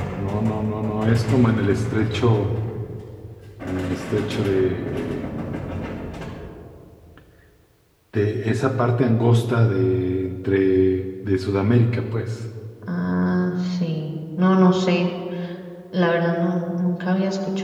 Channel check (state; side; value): identical; both; correlation 1.00